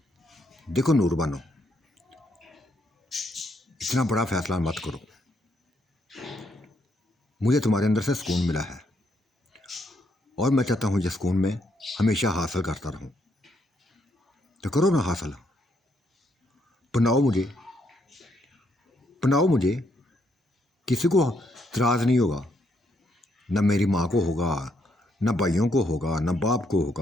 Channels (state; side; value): normal; both; correlation 0.75